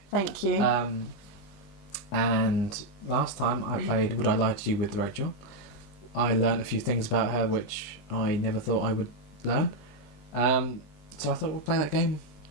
Thank you. And last time I played Would I Lie to You with Rachel. I learned a few things about her which I never thought I would learn. So I thought we'll play that game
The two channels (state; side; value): late; right; 20 ms